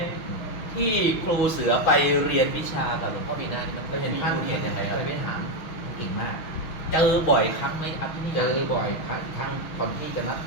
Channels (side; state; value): right; late; 6.1 ms